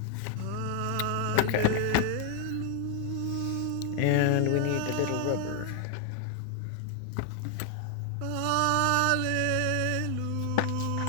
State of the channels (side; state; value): both; different; correlation 0.00